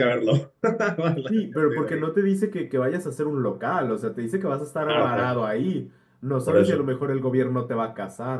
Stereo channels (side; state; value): both; identical; correlation 1.00